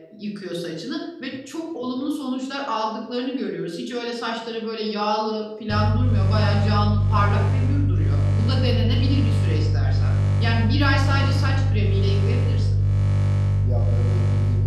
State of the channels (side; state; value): both; identical; correlation 1.00